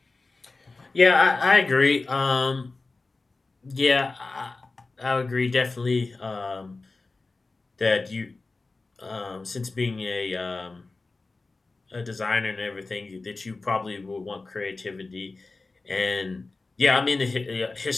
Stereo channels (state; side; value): quieter; right; 3.6 dB